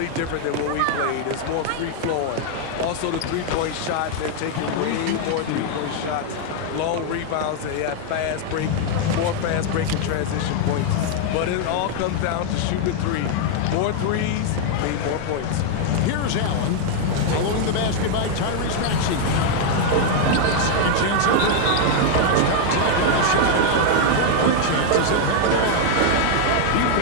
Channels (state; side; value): different; both; correlation 0.00